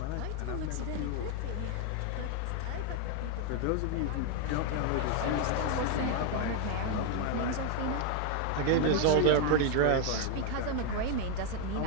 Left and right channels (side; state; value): both; different; correlation 0.01